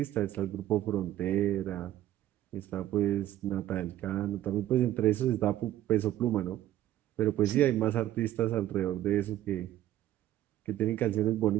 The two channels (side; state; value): left; quieter; 13.3 dB